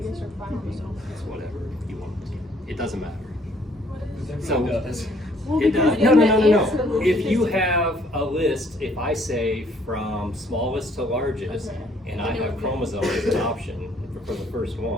or 5 being? It's whatever you want to. It doesn't matter. So So does. Well, it because does. in No. the answer list If it you says- have a list, if I say from smallest to largest, Okay. and I have chromosome as an option for the first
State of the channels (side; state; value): both; normal; correlation 0.63